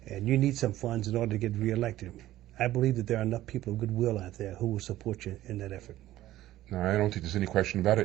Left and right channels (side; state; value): left; quieter; 14.7 dB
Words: and you need some funds in order to get reelected, I believe that there are enough people of goodwill out there who will support you in that effort. No, I don't think there's any question about